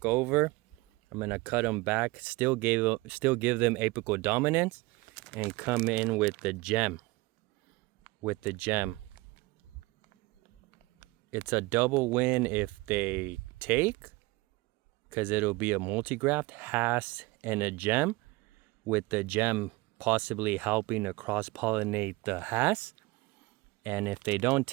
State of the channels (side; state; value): left; quieter; 22.4 dB